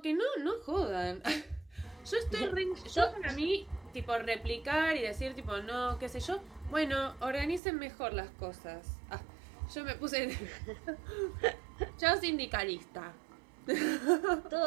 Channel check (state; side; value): drops out; left; at 7.6 s